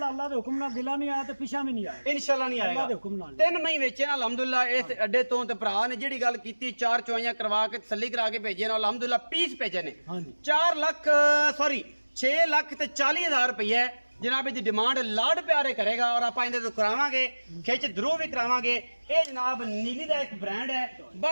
ਅੱਲਾਹ ਦੇ ਹੁਕਮ ਨਾਲ ਦਿਲਾਂ ਨਹੀਂ ਆਇਆ ਤੇ ਪਿਛਾ ਵੀ ਨਹੀਂ ਆਇਆ। ਇਨਸ਼ਾਅੱਲਾ ਨਹੀਂ ਅੱਲਾਹ ਦੇ ਆਏਗਾ। ਹੁਕਮ ਨਾਲ। 3 ਮਹੀਨੇ ਵੇਚੇ ਨਾ ਅਲਹਮਦੁਲਿਲਾ ਇਸ ਅੱਡੇ ਤੋਂ, ਤੇ ਭਰਾ ਨੇ ਜਿਹੜੀ ਗੱਲ ਕੀਤੀ 4 ਚੁਆਈਆਂ ਕਰਵਾ ਕੇ ਤਸੱਲੀ ਕਰਾ ਕੇ ਭੇਜੇ ਨੇ ਅਲਹਮਦੁਲਿਲਾ ਪੀਸ ਭੇਜੇ ਨੇ। ਹਾਂਜੀ 6,40,000 ਰੁਪਏ जनाब की डिमांड लाड प्यारे करेगा और आप इहदे तो करावांगे, खिच धरू भी करावांगे। ये जनाब नीली का एक ब्रांड है।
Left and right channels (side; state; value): both; inverted; correlation -1.00